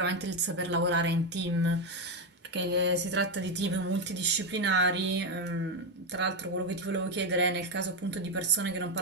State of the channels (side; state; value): both; normal; correlation 0.07